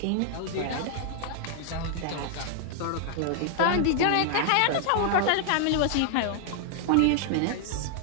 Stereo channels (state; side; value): different; both; correlation 0.00